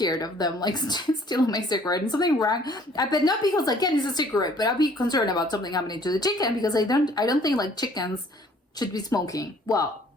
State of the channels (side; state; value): both; normal; correlation 0.57